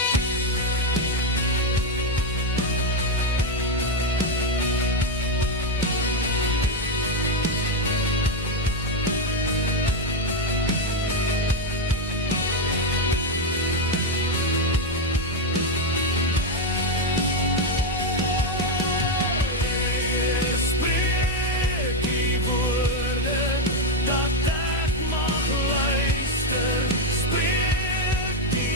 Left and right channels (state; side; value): normal; both; correlation 0.05